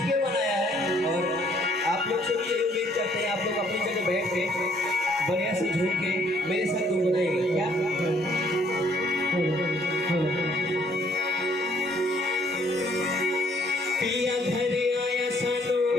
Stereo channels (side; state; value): both; normal; correlation 0.64